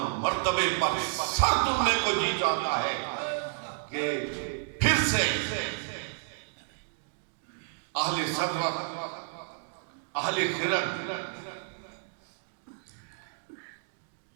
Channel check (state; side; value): silent; left; digital silence